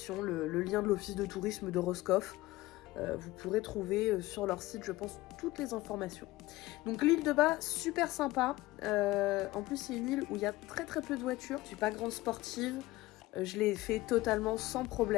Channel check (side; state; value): right; quieter; 18.5 dB